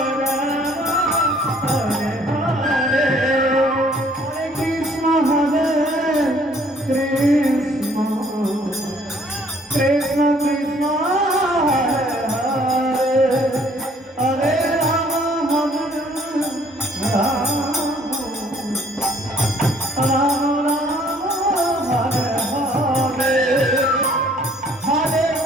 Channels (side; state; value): both; normal; correlation 0.60